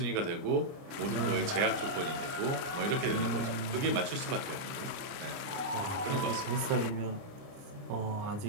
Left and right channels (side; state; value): left; late; 29 ms